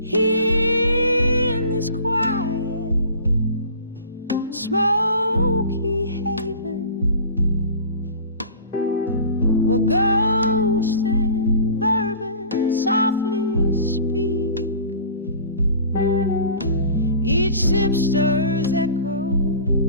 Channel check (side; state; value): both; inverted; correlation -0.41